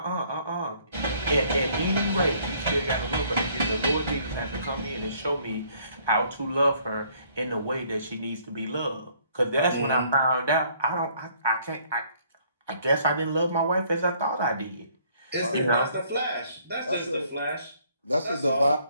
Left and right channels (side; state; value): both; inverted; correlation -0.63